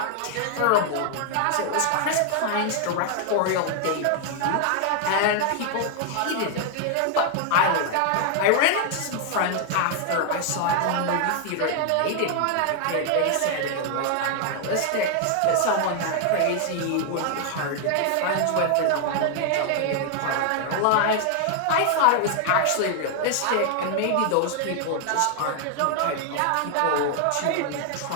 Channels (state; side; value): different; both; correlation 0.00